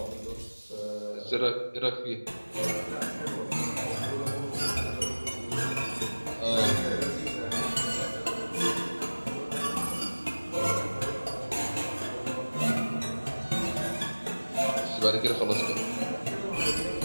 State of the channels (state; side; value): inverted; both; correlation -1.00